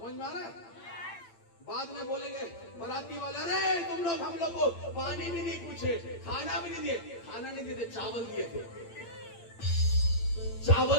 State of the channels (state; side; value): late; right; 8.8 ms